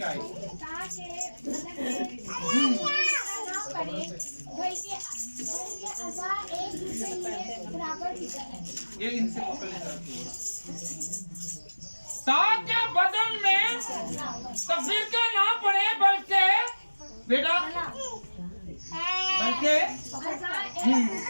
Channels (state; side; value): inverted; both; correlation -1.00